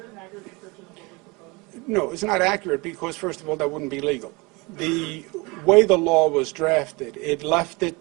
an accurate description of what was proposed? No, it's not accurate because, first of all, that wouldn't be legal. The way the law was drafted, it left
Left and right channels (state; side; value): quieter; left; 26.2 dB